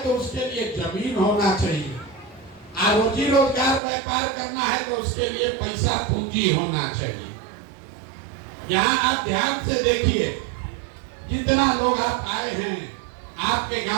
तो उसके लिए जमीन होना चाहिए, और रोजी रोजगार व्यापार करना है तो उसके लिए पैसा पूंजी होना चाहिए। यहाँ आप ध्यान से देखिए, जितना लोग आप आए हैं, आपके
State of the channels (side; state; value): left; drops out; at 3.8 s